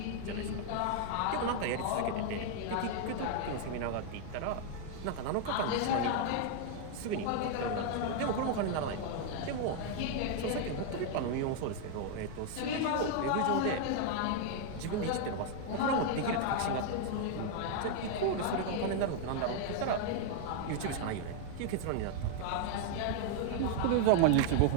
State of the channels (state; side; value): different; both; correlation 0.00